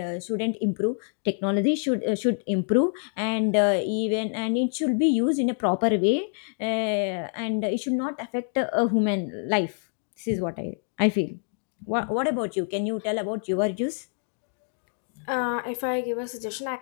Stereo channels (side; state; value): right; silent; 61 dB below the other